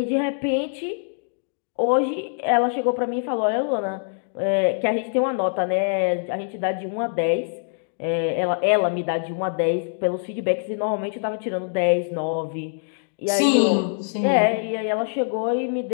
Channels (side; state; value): right; silent; digital silence